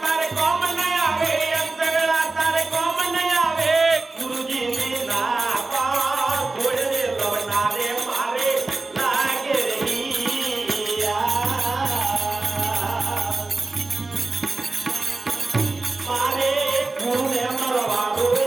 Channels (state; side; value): quieter; left; 3.4 dB